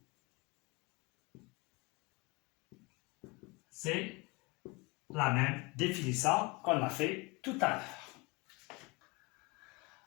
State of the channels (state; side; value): quieter; right; 26.8 dB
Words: C'est la même définition qu'on a fait tout à l'heure.